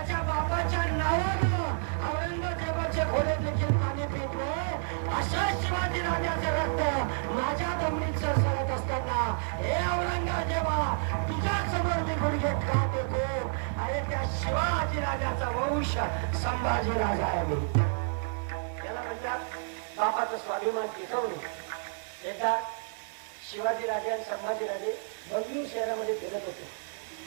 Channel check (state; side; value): silent; left; digital silence